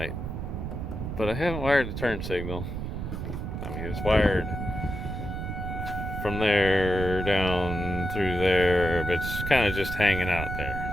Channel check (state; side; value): noise; right; rumble, 5 dB below the sound